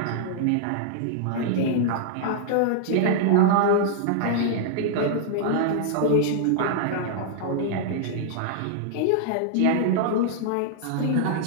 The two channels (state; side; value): different; both; correlation -0.01